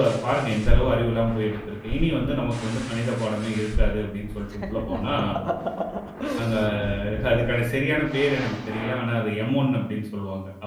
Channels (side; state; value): both; identical; correlation 1.00